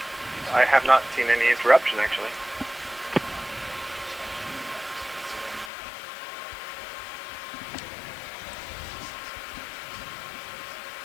I have not seen any interruption, actually.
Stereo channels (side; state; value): right; drops out; at 5.7 s